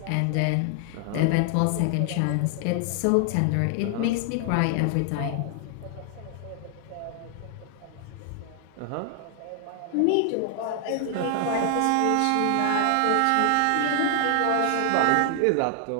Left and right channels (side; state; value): both; different; correlation 0.00